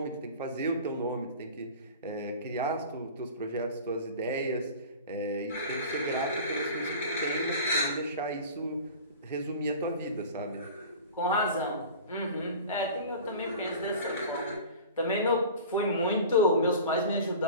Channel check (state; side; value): inverted; both; correlation -0.38